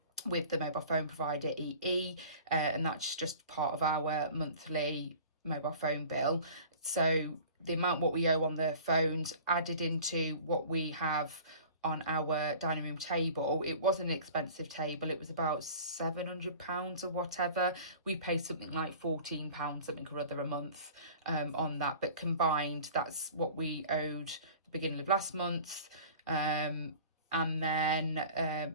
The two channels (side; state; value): both; inverted; correlation -0.43